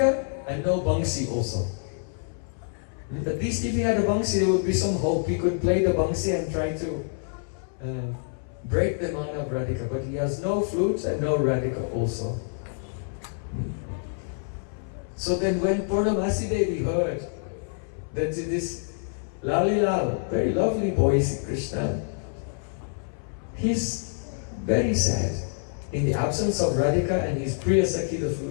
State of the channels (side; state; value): right; silent; 59 dB below the other